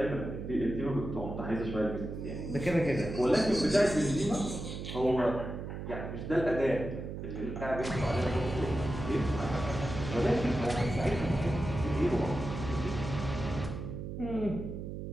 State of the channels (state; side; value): noise; right; hum, 7 dB below the sound